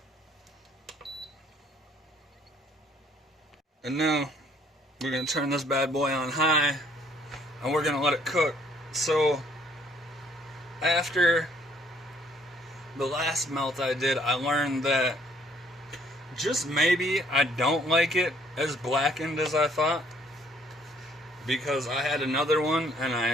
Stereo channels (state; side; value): normal; both; correlation 0.62